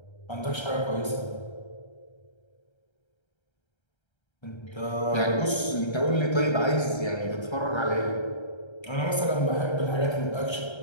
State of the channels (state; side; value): late; right; 1.3 ms